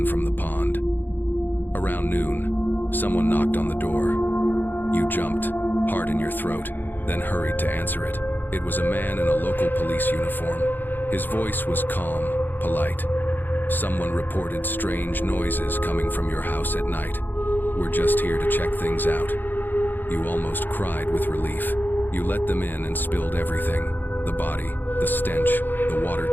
from the pond. Around noon, someone knocked on the door. You jumped, heart in your throat, then hurried to answer it. It was a man in a local police uniform. His voice was calm, polite. "Someone reported strange noises coming from your house at night. We're just here to check things out." You almost cried with relief. You let them in and spilled everything. The body, the stench, the water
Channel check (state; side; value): late; right; 0.090 ms